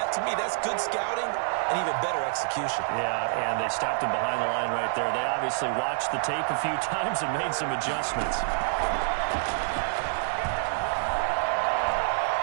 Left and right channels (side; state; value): left; silent; digital silence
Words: to me, that's good scouting and even better execution. Yeah, and they stopped him behind the line right there. They obviously watched the tape a few times and made some adjustments.